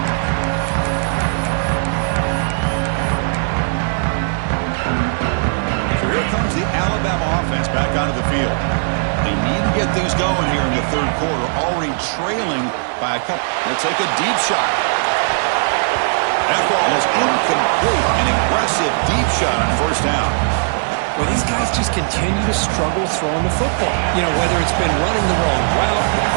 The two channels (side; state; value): left; silent; 67 dB below the other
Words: The Alabama offense back onto the field. They need to get things going here in the third quarter, already trailing by a couple. They'll take a deep shot. That ball is incomplete. An aggressive deep shot on first down. Well, these guys just continue to struggle throwing the football. You know, whether it's been running the wrong route, the